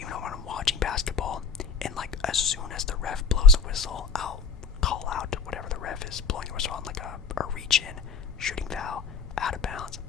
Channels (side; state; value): right; quieter; 5.3 dB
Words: when I'm watching basketball, and like as soon as the ref blows a whistle, I'll call out whatever the ref is blowing a whistle on, like a reach in, shooting foul, out of bounds,